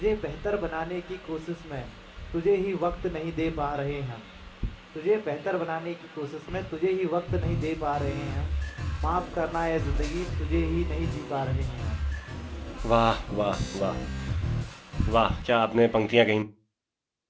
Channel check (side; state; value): both; identical; correlation 1.00